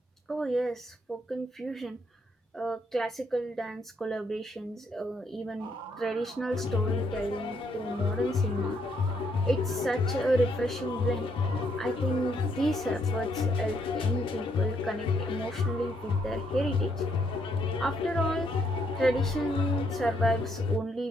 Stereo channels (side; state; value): both; normal; correlation 0.74